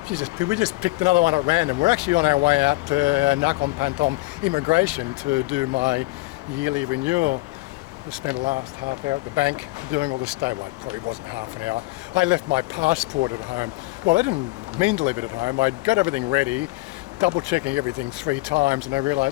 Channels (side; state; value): right; quieter; 21.8 dB